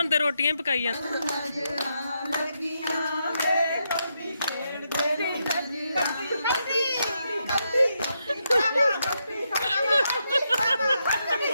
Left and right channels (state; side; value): inverted; both; correlation -0.82